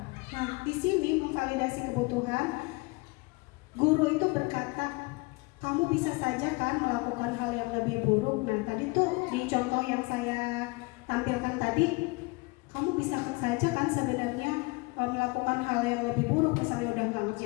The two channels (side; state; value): right; quieter; 26.3 dB